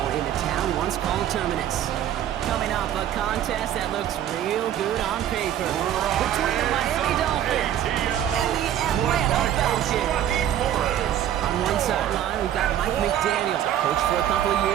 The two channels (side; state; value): left; quieter; 11.0 dB